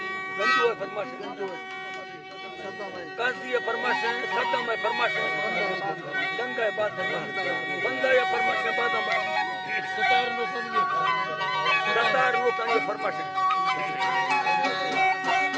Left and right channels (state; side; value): identical; both; correlation 1.00